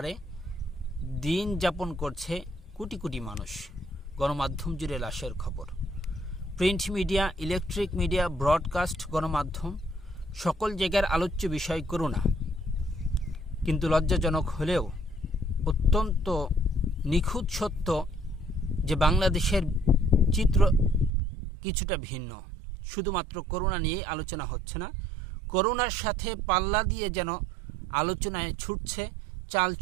দিন যাপন করছে কোটি কোটি মানুষ। গণমাধ্যম জুড়ে লাশের খবর। Print media, electric media, broadcast, গণমাধ্যম সকল জায়গার আলোচ্য বিষয় করোনা। কিন্তু লজ্জাজনক হলেও অত্যন্ত নিখুঁত সত্য যে বাংলাদেশের চিত্র কিছুটা ভিন্ন। শুধুমাত্র করোনা নিয়েই আলোচনা হচ্ছে না, করোনার সাথে পাল্লা দিয়ে যেন আলোচনায় ছুটছে চাল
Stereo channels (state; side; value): drops out; left; at 21.1 s